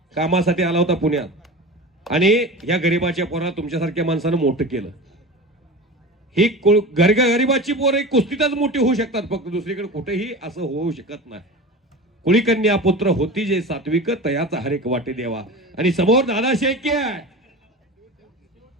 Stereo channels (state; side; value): normal; both; correlation 0.31